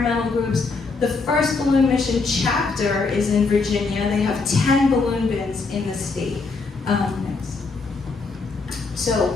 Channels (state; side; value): quieter; right; 4.2 dB